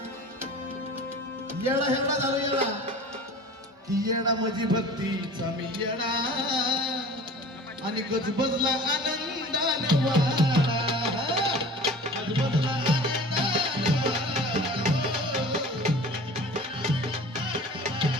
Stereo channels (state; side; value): normal; both; correlation 0.41